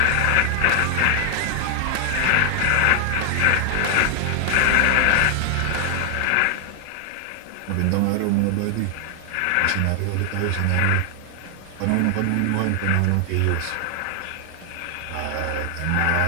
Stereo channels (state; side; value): different; both; correlation 0.00